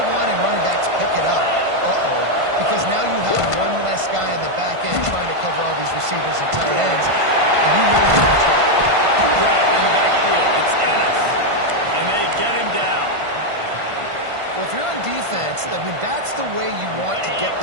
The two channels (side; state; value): left; late; 1.5 ms